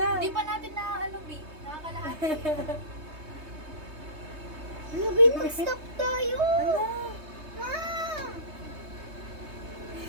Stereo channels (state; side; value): late; left; 3.2 ms